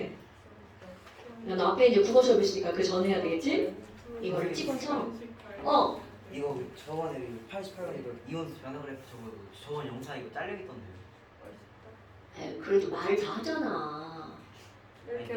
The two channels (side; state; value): both; identical; correlation 1.00